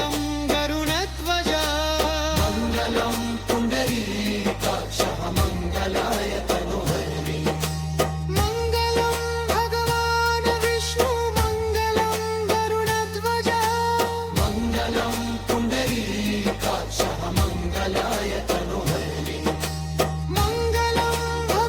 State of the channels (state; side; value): identical; both; correlation 1.00